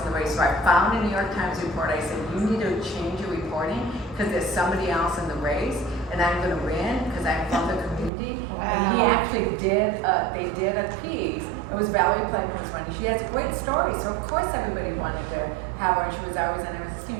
the race. So I found a New York Times report. I said, you need to change your reporting because there's somebody else in the race. and I'm gonna win because I'm from the community. And he actually did, they did a piece. It was Valerie Plankton's one. She has a great story, so of course everybody wanted to have her, and she was always on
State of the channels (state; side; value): drops out; left; at 8.1 s